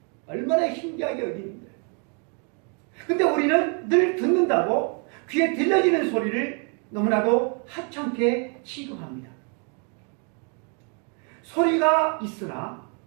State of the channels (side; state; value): left; quieter; 38.7 dB